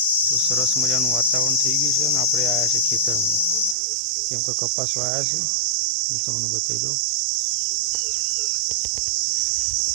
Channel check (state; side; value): drops out; left; at 3.8 s